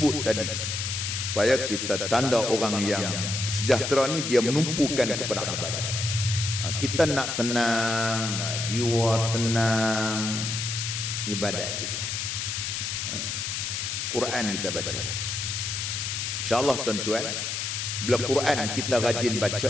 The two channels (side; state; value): left; noise; hiss, 3 dB below the sound